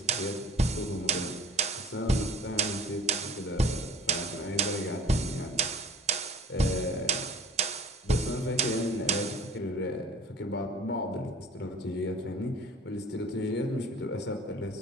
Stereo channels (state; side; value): normal; both; correlation 0.47